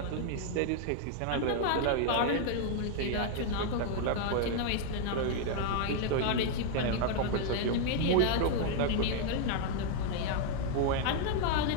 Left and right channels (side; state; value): both; different; correlation 0.00